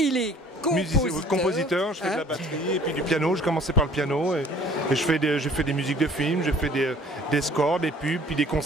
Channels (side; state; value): both; normal; correlation 0.53